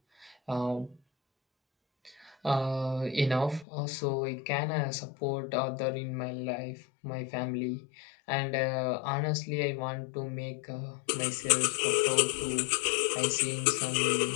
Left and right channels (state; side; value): drops out; right; at 3.7 s